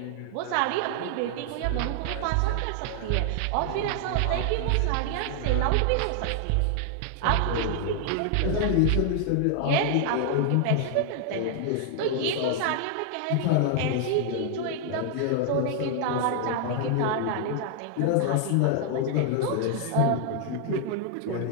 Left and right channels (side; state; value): both; different; correlation 0.00